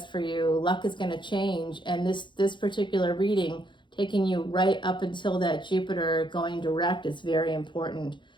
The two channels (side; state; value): right; late; 0.23 ms